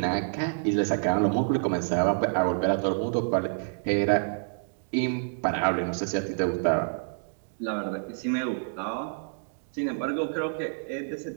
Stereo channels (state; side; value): silent; left; digital silence